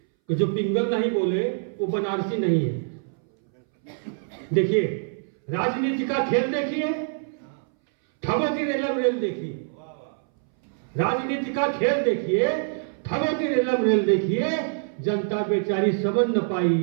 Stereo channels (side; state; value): left; silent; 61 dB below the other